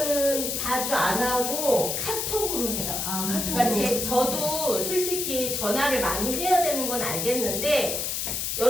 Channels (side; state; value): left; noise; hiss, 1 dB below the sound